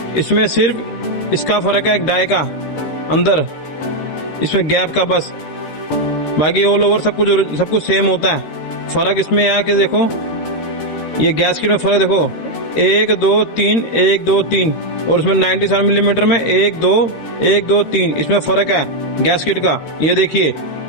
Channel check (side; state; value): right; late; 13 ms